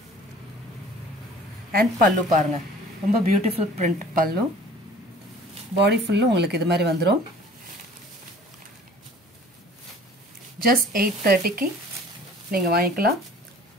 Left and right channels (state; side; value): normal; both; correlation 0.49